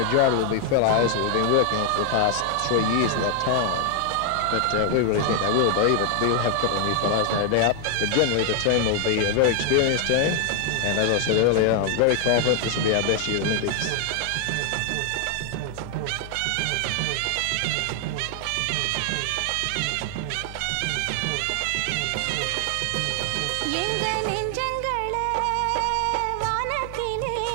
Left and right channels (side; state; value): both; different; correlation 0.00